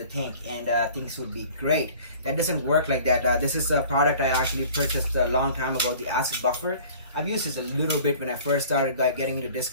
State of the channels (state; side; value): inverted; both; correlation -0.47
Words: tank and things would be great. That doesn't work like that. This is a product I actually purchased a long time ago, the acid buffer. I've used this a little bit when I first started getting into